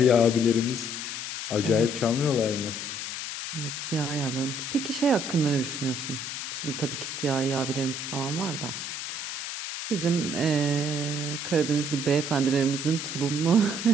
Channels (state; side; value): noise; left; hiss, 5 dB below the sound